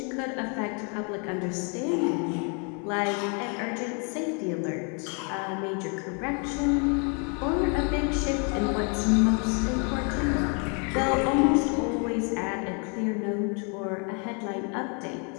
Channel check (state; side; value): quieter; right; 37.5 dB